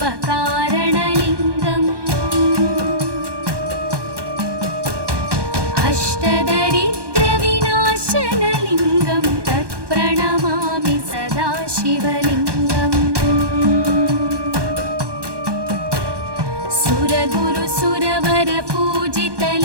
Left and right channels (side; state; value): left; late; 1.2 ms